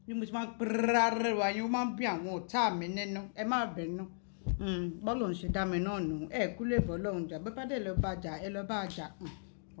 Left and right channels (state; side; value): silent; right; digital silence